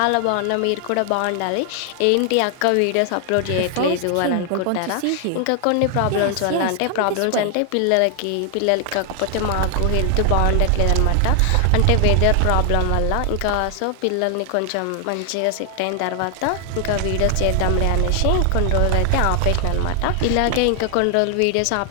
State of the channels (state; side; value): different; both; correlation 0.00